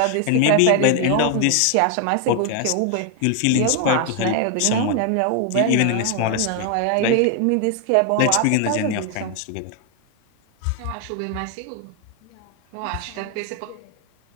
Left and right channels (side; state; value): both; different; correlation 0.00